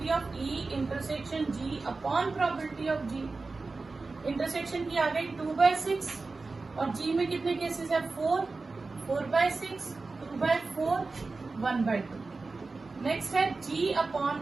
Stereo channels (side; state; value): left; quieter; 3.8 dB